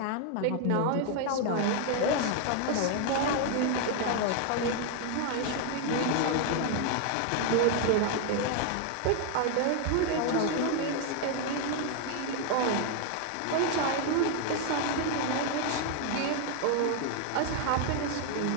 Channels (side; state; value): both; different; correlation 0.00